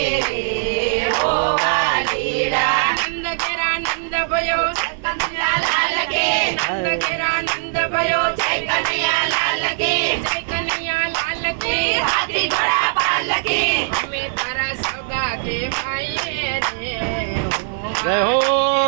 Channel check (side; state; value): left; silent; 59 dB below the other